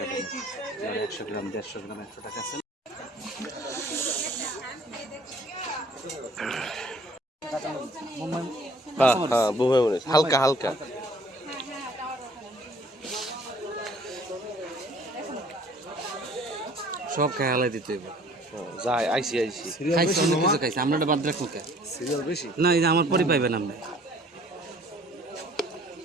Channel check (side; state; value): both; normal; correlation 0.55